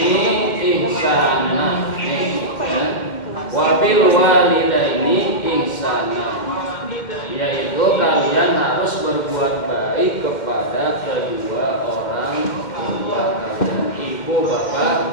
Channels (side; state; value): right; late; 2.1 ms